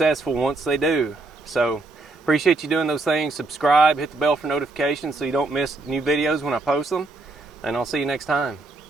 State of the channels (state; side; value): quieter; left; 3.2 dB